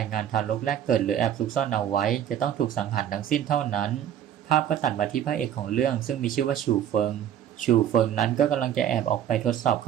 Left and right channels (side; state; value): left; quieter; 10.1 dB